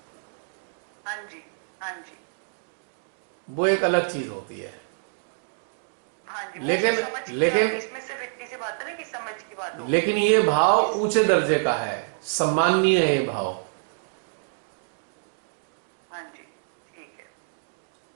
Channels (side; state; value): left; silent; digital silence